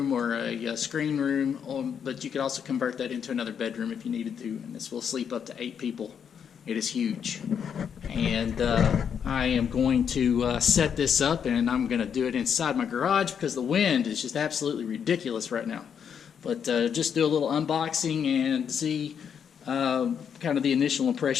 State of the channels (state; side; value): quieter; right; 7.7 dB